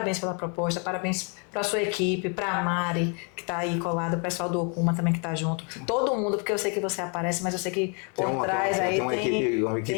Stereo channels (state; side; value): quieter; right; 36.8 dB